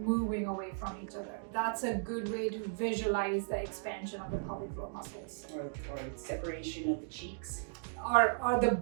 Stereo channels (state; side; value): silent; left; digital silence